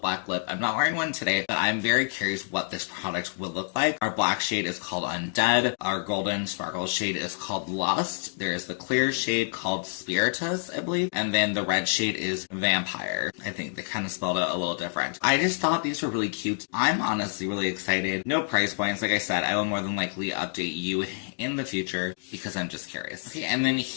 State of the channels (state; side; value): silent; right; digital silence